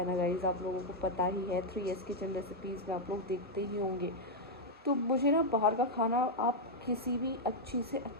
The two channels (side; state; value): both; normal; correlation -0.01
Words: ना गाइस, आप लोगों को पता ही है, 3S किचन रेसिपीज़ में आप लोग देखते ही होंगे। तो मुझे ना बाहर का खाना, आप किसी भी अच्छी से